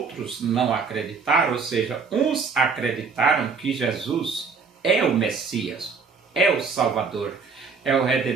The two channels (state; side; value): quieter; left; 5.1 dB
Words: não acreditaram, ou seja, uns acreditaram que Jesus é o Messias, é o Salvador, é o